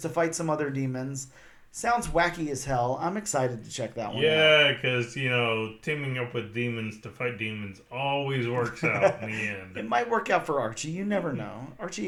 fight some other demons. Sounds wacky as hell. I'm excited to check that one out. Yeah, because, teaming up with demons to fight demons always works out in the end. It might work out for Archie. You never know.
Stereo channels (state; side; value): identical; both; correlation 1.00